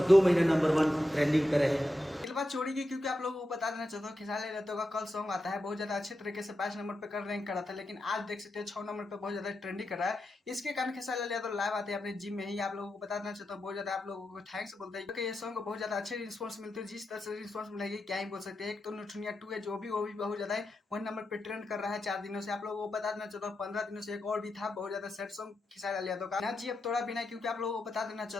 2 महीने नंबर 1 ट्रेंडिंग पे रहे। बात छोड़ी गई, क्योंकि आप लोगों को बता देना चाहता हूँ खेसारी लाल यादव का कल सॉन्ग आता है, बहुत ज्यादा अच्छे तरीके से 5 नंबर पे कर रैंक करा था, लेकिन आज देख सकते हैं 6 नंबर पे बहुत ज्यादा ट्रेंडिंग कर रहा है। इसके कारण खेसारी लाल यादव लाइव आते हैं अपने जिम में ही। आप लोगों को बता देना चाहता हूँ, बहुत ज्यादा आप लोगों को थैंक्स बोलते हैं, क्योंकि ये सॉन्ग को बहुत ज्यादा अच्छे रिस्पॉन्स मिलते हैं। जिस तरह से रिस्पॉन्स मिलेगी क्या ही बोल सकते हैं। एक तो नथुनिया 2 है, जो भी वो भी बहुत ज्यादा 1 नंबर पे ट्रेंड कर रहा है 4 दिनों से। आप लोगों को बता देना चाहता हूँ 15 दिनों से एक और भी था बहुत ज्यादा सेट सॉन्ग खेसारी लाल यादव का, ना जी अब थोड़ा बिना, क्योंकि आप लोगों को बता देना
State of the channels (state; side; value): normal; both; correlation 0.88